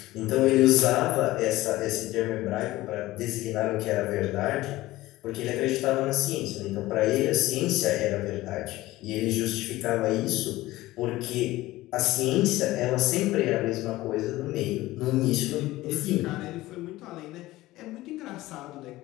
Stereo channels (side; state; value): right; quieter; 17.5 dB